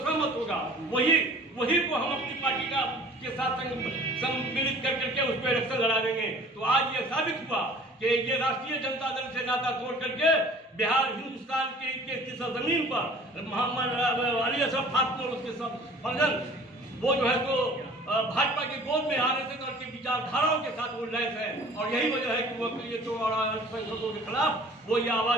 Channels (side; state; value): both; normal; correlation 0.48